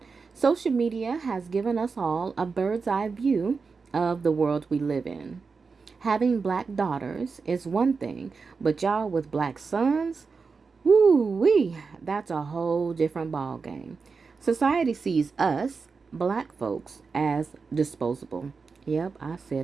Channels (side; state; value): left; quieter; 4.8 dB